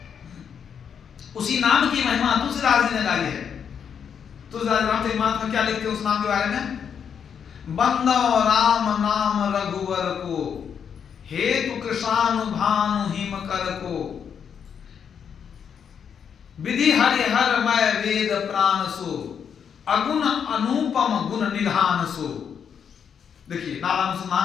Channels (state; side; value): quieter; right; 7.5 dB